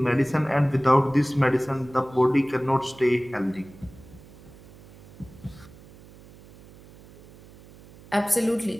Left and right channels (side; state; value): right; noise; hum, 22 dB below the sound